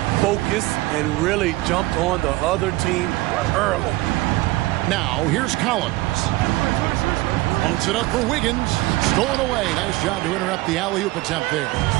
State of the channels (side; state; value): left; quieter; 19.5 dB